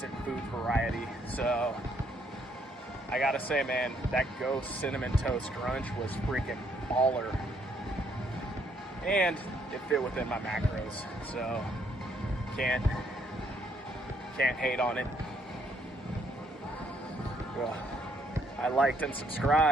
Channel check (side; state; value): both; normal; correlation 0.70